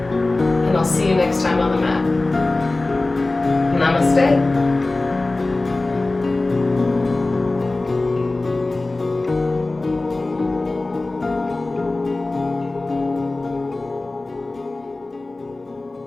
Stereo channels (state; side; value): quieter; right; 3.1 dB